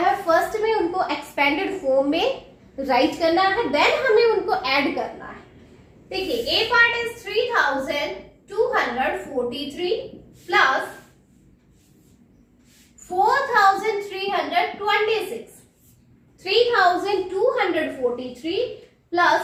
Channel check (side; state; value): both; identical; correlation 1.00